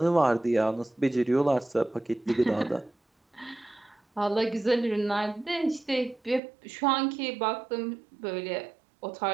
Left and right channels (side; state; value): left; drops out; at 6.4 s